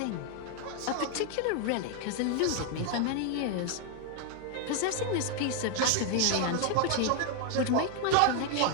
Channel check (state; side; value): different; both; correlation 0.00